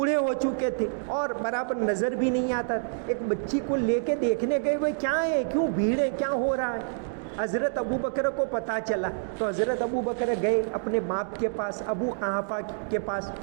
ہو چکے تھے اور برابر نظر بھی نہیں آتا. ایک بچی کو لے کے دیکھنے گئے, وہ کیا ہے, کیوں بھیڑ ہے, کیا ہو رہا ہے. حضرت ابو بکر کو پتہ چلا تو حضرت ابو بکر گئے اپنے باپ کے پاس, ابو قحافہ کے پاس,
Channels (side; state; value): left; silent; digital silence